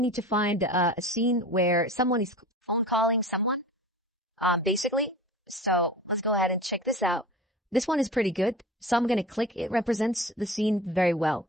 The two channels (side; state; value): both; normal; correlation 0.37